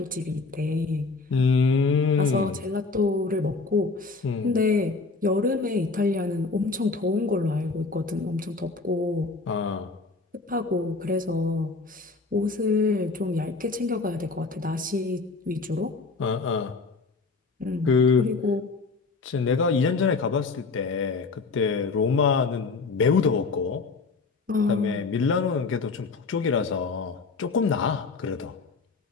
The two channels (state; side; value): quieter; right; 4.1 dB